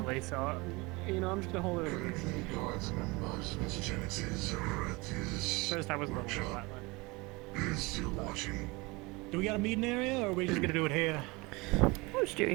so, you know, I'm just gonna hold it over. First I was a little bit violent. Do we got a meeting area, or are we just gonna do it here? I'll just do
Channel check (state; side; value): quieter; left; 24.7 dB